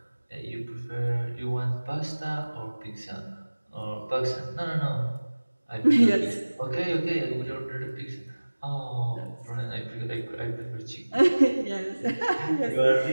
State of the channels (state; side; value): inverted; both; correlation -1.00